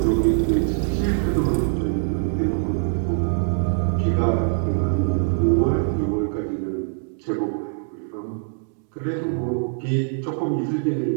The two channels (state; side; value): silent; left; digital silence